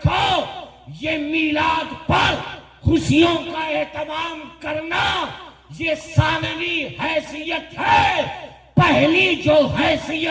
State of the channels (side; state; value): both; identical; correlation 1.00